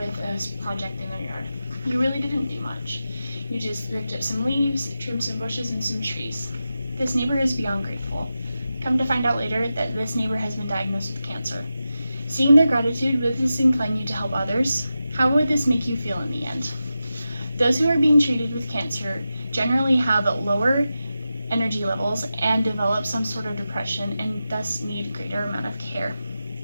a project in their yard. You really didn't do much. You just ripped up some leaves, trimmed some bushes, and some trees. This neighbor is beyond grateful. Come to find out later that this neighbor has been diagnosed with cancer. Seeing their gratitude, would this incline you to help others? How would this make you feel in the end? Those who are being treated with cancer generally have lower energy levels and develop some sort of depression and thus need greater amount of care.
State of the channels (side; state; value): both; inverted; correlation -0.91